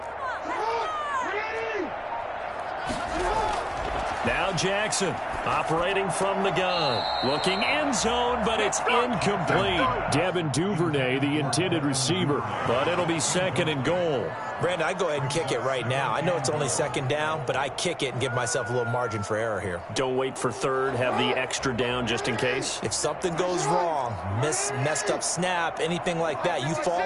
Now Jackson operating from the gun. Looking end zone, but it's incomplete. Devin Duvernay, the intended receiver, but it'll be 2nd and goal. Brandon, I go ahead and kick it right now. I know it's only 2nd down, but I kick it and give myself a little margin for error here. Don't wait for 3rd. Have the extra down just in case. If something goes wrong, messed up snap, anything like that, you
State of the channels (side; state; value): both; identical; correlation 1.00